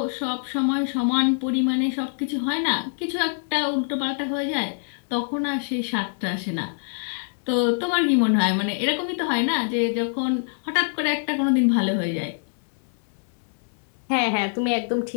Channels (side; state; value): right; silent; 62 dB below the other